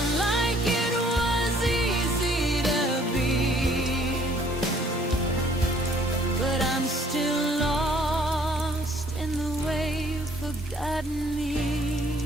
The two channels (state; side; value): normal; both; correlation 0.60